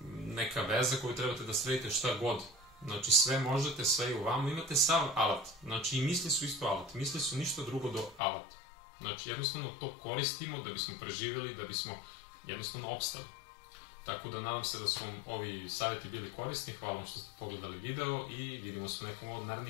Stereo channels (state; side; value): drops out; right; at 8.2 s